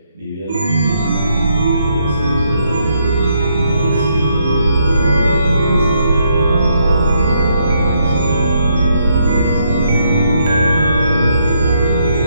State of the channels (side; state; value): both; inverted; correlation -0.75